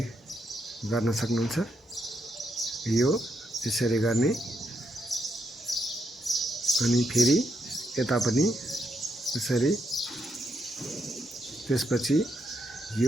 गर्न सक्नुहुन्छ। यो यसरी गर्ने अनि फेरि यता पनि यसरी, त्यसपछि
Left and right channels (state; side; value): normal; both; correlation 0.80